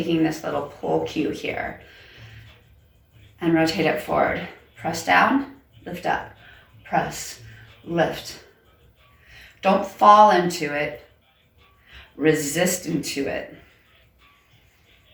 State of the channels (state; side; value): identical; both; correlation 1.00